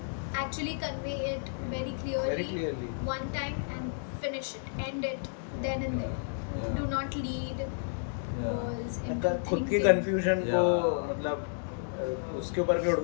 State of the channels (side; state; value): right; silent; digital silence